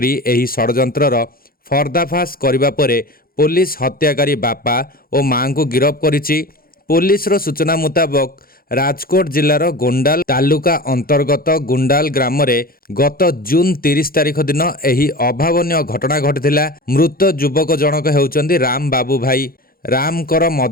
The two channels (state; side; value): late; right; 0.42 ms